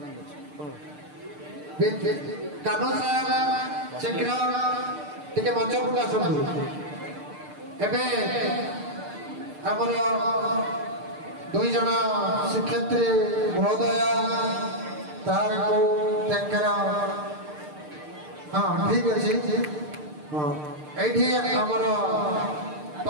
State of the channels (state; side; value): late; left; 6.6 ms